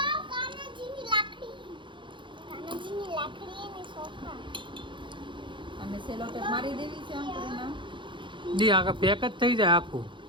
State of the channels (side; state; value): left; late; 0.23 ms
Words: અને સેલો ટેપ મારી દેવી છે આમ કરીને દી આખા પેક જ થઈ જાય આખું,